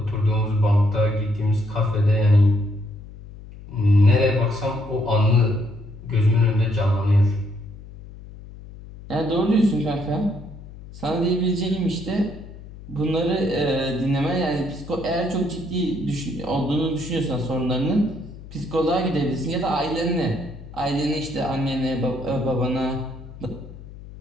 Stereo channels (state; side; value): noise; left; hum, 16 dB below the sound